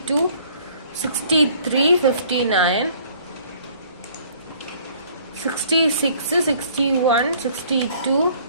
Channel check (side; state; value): both; inverted; correlation -0.57